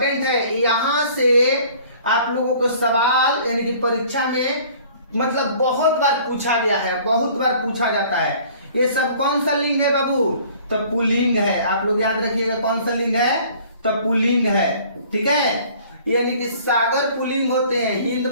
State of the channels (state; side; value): inverted; both; correlation -0.52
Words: है, यहां से आप लोगों को सवाल यानी कि परीक्षा में मतलब बहुत बार पूछा गया है, बहुत बार पूछा जाता है। ये सब कौन सा लिंग है बाबू? तो पुल्लिंग है। आप लोग याद रखिएगा कौन सा लिंग है? तो पुल्लिंग है। ठीक है, यानी कि सागर पुल्लिंग होते हैं, हिंद